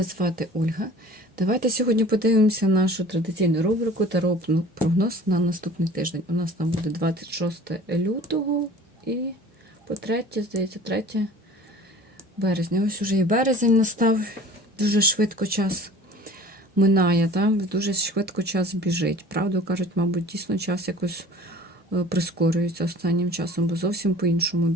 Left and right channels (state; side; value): normal; both; correlation 0.45